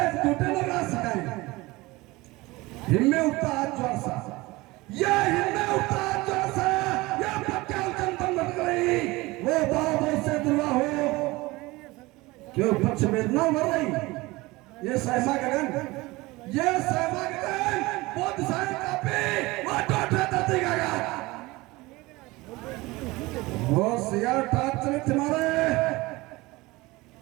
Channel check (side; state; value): left; quieter; 21.4 dB